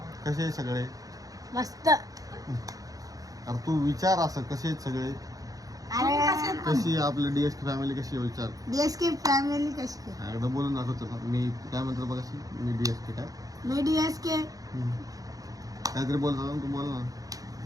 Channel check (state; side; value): late; left; 0.17 ms